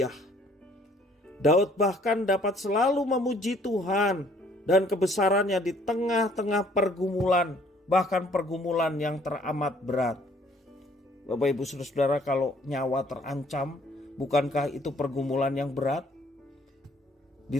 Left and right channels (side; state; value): both; normal; correlation 0.60